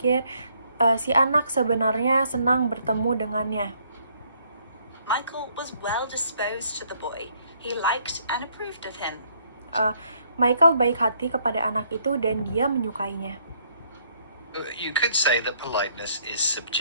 si anak sebenarnya senang bertemu dengannya. Michael was well disposed to the boy. He liked and approved of him. Michael baik hati kepada anak itu dan dia menyukainya. You could say that politeness is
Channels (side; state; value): both; inverted; correlation -0.67